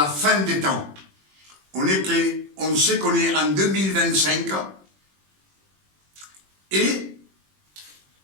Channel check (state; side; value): late; left; 21 ms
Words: fin des temps. On sait qu'on est en 2025 et